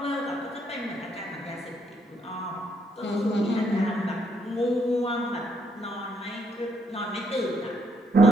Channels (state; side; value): normal; both; correlation 0.73